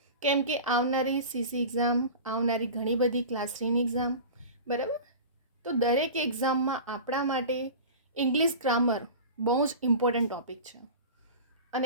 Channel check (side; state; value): both; inverted; correlation -0.34